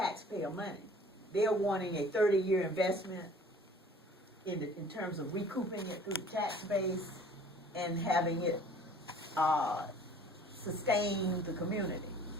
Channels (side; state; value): both; normal; correlation 0.50